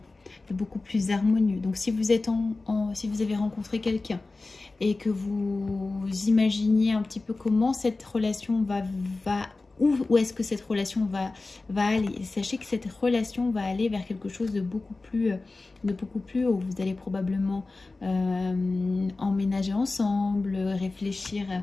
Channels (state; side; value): quieter; right; 3.4 dB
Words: de beaucoup plus harmonieux. Donc si vous êtes si vous avez rencontré quelqu'un et que vous imaginiez un petit peu comment cette relation où est-ce que cette relation va aller. Sachez que cette relation va aller vers quelque chose de beaucoup plus haut. Vous allez probablement emménager ensemble, réfléchir